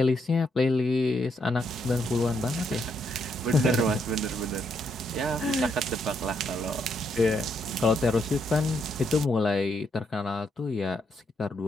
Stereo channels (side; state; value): both; normal; correlation 0.76